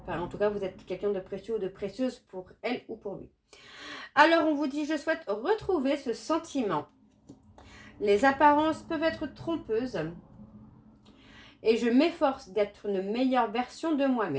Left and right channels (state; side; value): identical; both; correlation 1.00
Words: Enfin, en tout cas, vous êtes quelqu'un de précieux ou de précieuse pour elle ou pour lui. Alors, on vous dit, je souhaite retrouver ce sentiment. Les apparences peuvent être trompeuses. Et je m'efforce d'être une meilleure version de